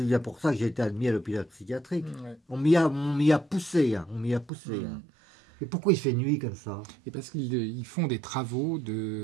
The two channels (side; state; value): left; drops out; at 4.5 s